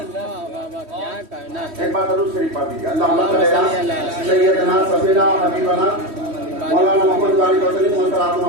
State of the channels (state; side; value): late; left; 3.1 ms